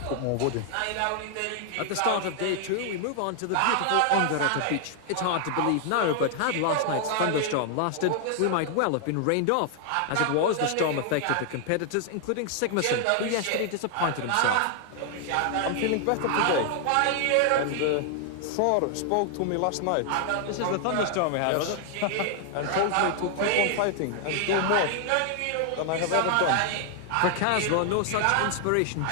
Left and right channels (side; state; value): both; different; correlation 0.00